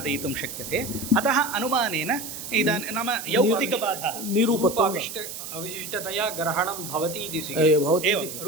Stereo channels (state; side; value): noise; right; hiss, 9 dB below the sound